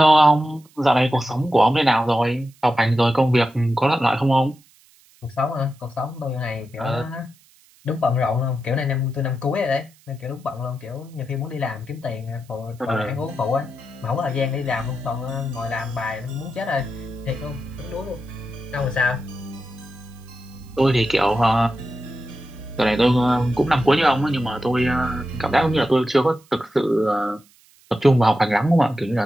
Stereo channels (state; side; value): noise; right; hiss, 30 dB below the sound